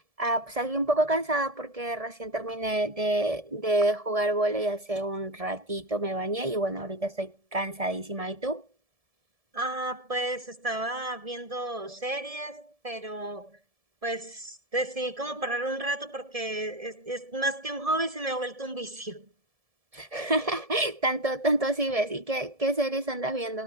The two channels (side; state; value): left; late; 1.7 ms